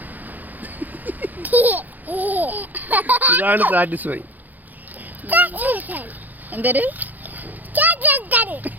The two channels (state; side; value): late; left; 0.084 ms